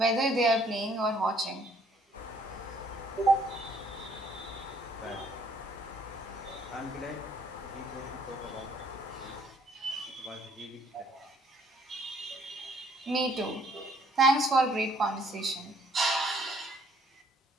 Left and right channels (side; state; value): both; normal; correlation 0.63